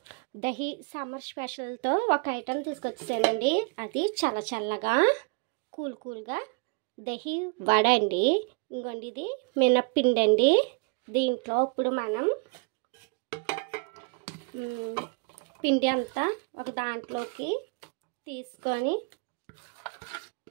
dahi summer స్పెషల్తో ఒక ఐటెం తీసుకొచ్చేసానండి. అది చల్లగా కూల్గా దహి వడ అండి. ఇంకోండి ఇది మినప్పిండి అండి. దీంట్లో ఇప్పుడు మనం పిండి అంతా ఒక దాంట్లోకి తీసుకొని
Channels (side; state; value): left; quieter; 34.3 dB